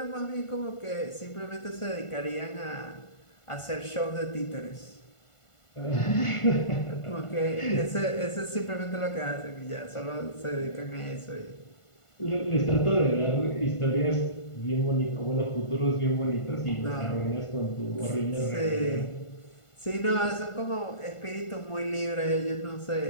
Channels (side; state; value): right; late; 1.5 ms